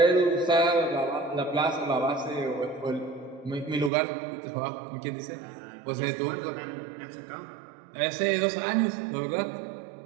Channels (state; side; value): drops out; left; at 3.9 s